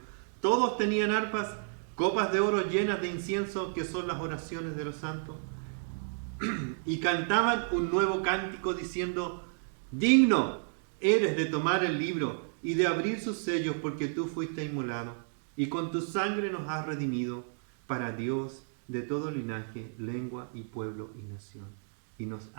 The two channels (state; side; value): silent; left; digital silence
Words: Todos tenían arpas, copas de oro llenas de incienso, que son las oraciones de los santos. y cantaban un nuevo cántico diciendo: digno eres de tomar el libro y de abrir sus sellos, porque tú fuiste inmolado y con tu sangre nos has redimido para Dios de todo linaje, lengua y pueblo y nación. Y nos